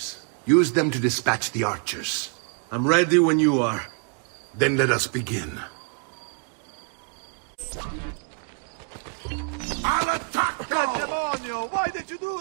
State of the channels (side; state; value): left; quieter; 39.5 dB